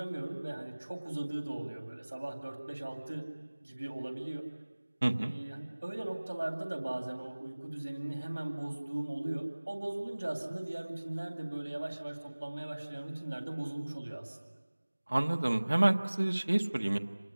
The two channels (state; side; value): inverted; both; correlation -1.00